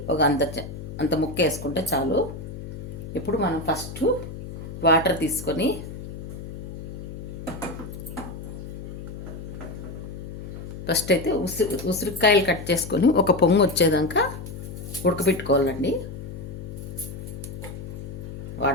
ఒక అంత ముక్క వేసుకుంటే చాలు. ఇప్పుడు మనం ఫస్ట్ వాటర్ తీసుకొని ఫస్ట్ అయితే ఉసిరికాయలు కట్ చేసుకొని ఒక పొంగు వచ్చేదాకా ఉడకబెట్టుకోవాలండి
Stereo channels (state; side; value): noise; left; hum, 9 dB below the sound